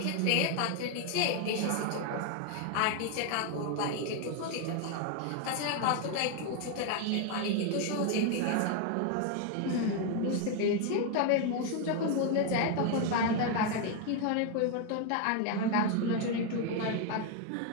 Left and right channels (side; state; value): both; different; correlation 0.01